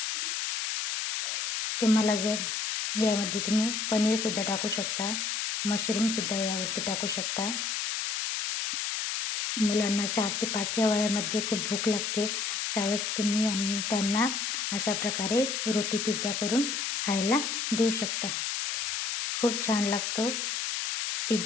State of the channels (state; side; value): noise; left; hiss, 1 dB below the sound